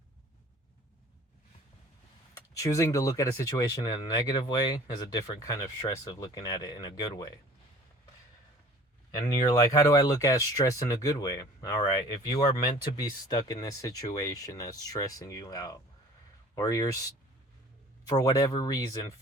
choosing to look at a situation in a negative way is a different kind of stress of looking at it in a good way. And you're like, how do I look at stress in a good way? All right, if you are meant to be stuck in this situation that's stressing you out, or you're for whatever reason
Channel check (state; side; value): normal; both; correlation 0.48